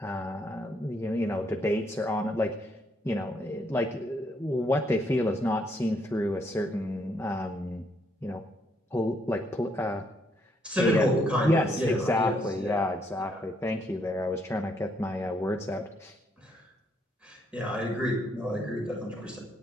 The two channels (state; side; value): normal; both; correlation 0.72